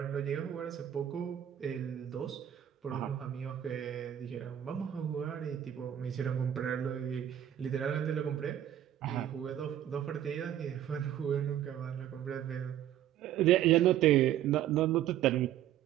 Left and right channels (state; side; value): quieter; left; 11.1 dB